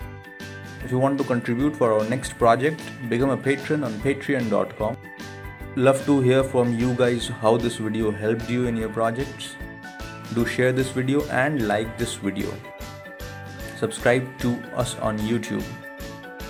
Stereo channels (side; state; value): both; identical; correlation 1.00